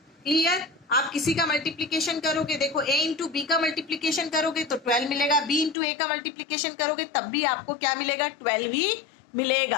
क्लियर. आप किसी का मल्टीप्लीकेशन करोगे, देखो a इंटू बी का मल्टीप्लीकेशन करोगे तो 12 मिलेगा. b इंटू ए का मल्टीप्लीकेशन करोगे तब भी आपको क्या मिलेगा, 12 ही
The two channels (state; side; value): drops out; right; at 5.8 s